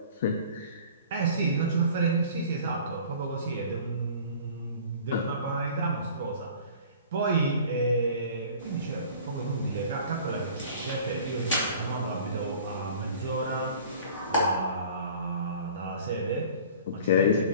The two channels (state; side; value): inverted; both; correlation -0.46